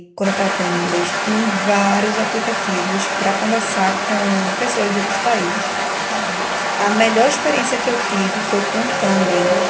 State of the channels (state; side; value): identical; both; correlation 1.00